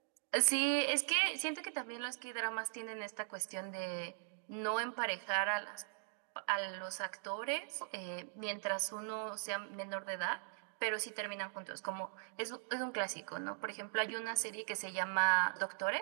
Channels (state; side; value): silent; left; digital silence